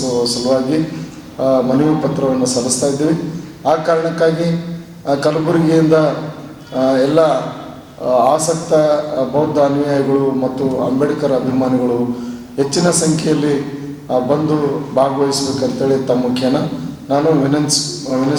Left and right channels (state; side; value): identical; both; correlation 1.00